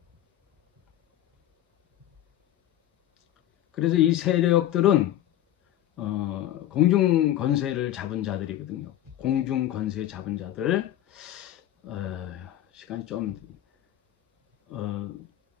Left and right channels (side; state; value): right; quieter; 12.8 dB